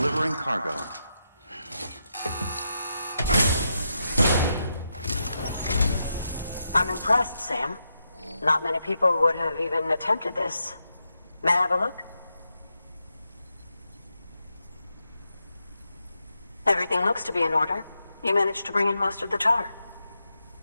cargo. I'm impressed, Sam. Not many people would have even attempted this. May I have a look? Everything looks to be in order. You managed to bring in most of the tar.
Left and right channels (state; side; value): inverted; both; correlation -0.85